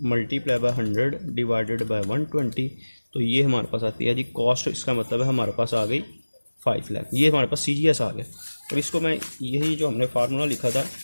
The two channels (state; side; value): inverted; both; correlation -1.00